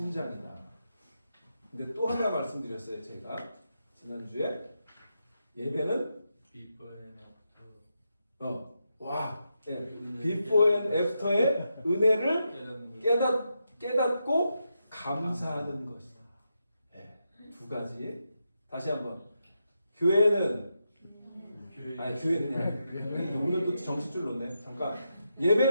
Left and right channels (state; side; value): inverted; both; correlation -0.85